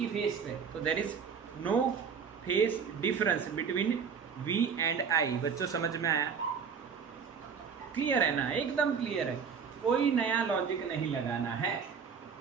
फेस पे, तो there is no phase difference between V and I। बच्चों समझ में आया? क्लियर है ना? एकदम क्लियर है, कोई नया लॉजिक नहीं लगाना है।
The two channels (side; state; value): left; quieter; 6.5 dB